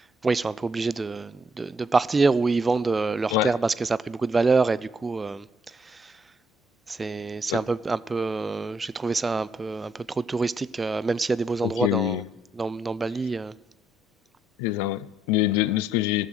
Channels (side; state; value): both; normal; correlation 0.72